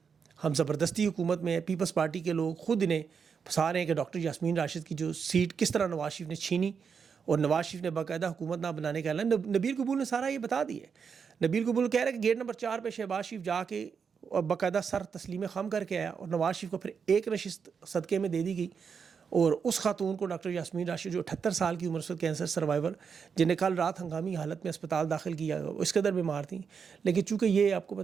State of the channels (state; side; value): quieter; left; 6.3 dB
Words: ہم زبردستی حکومت میں. پیپلز پارٹی کے لوگ خود انہیں پھنسا رہے ہیں کہ ڈاکٹر یاسمین راشد کی جو سیٹ کس طرح نواز شریف نے چھینی, اور نواز شریف نے باقاعدہ حکومت نہ بنانے کا اعلان. نبیل قبول نے سارا یہ بتا دیا ہے. نبیل قبول کہہ رہے ہیں کہ گیٹ نمبر 4 پہ شہباز شریف جا کے اور باقاعدہ سر تسلیم خم کر کے آیا, اور نواز شریف کو پھر ایک نشست صدقے میں دے دی گئی. اور اس خاتون کو ڈاکٹر یاسمین راشد جو 78 سال کی عمر سے کینسر سروائیور, جنہیں کل رات ہنگامی حالت میں اسپتال داخل کیا, وہ اس قدر بیمار تھیں. لیکن چونکہ یہ آپ کو